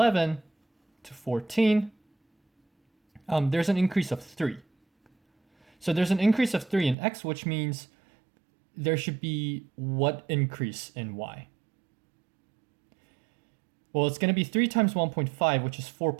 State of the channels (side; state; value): left; drops out; at 7.0 s